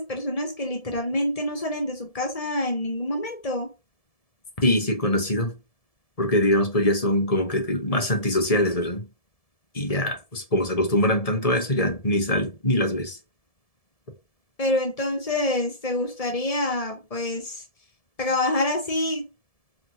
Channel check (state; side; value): late; right; 1.7 ms